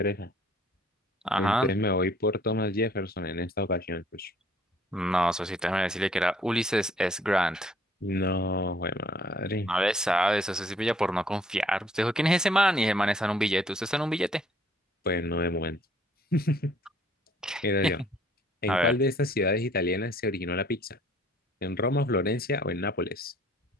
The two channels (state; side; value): normal; both; correlation 0.60